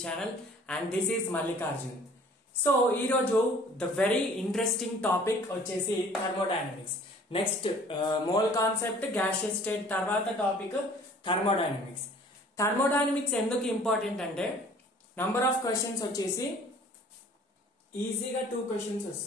channel and this is Mallikarjun. So ee roju the very interesting topic vachesi thermodynamics. Next mole concept gaseous state tarvata topic thermodynamics. Thermodynamics enduku important ante number of questions vachesi easy ga 2 questions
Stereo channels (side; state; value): both; normal; correlation 0.52